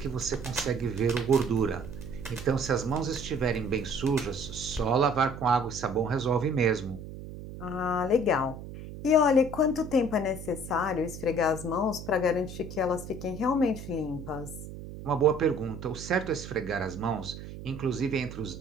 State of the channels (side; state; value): right; noise; hum, 11 dB below the sound